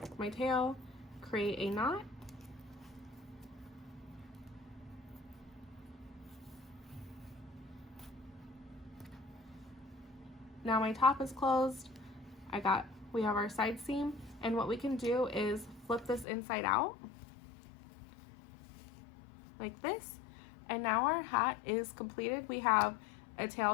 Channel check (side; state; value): right; drops out; at 16.2 s